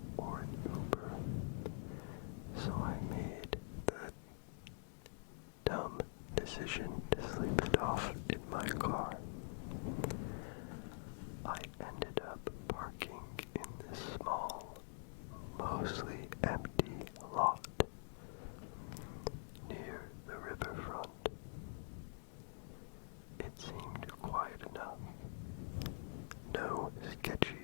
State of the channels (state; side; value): silent; right; digital silence